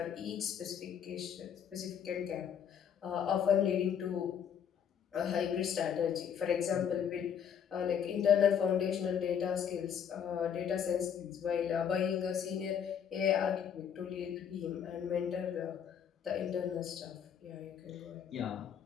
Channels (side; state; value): right; quieter; 8.2 dB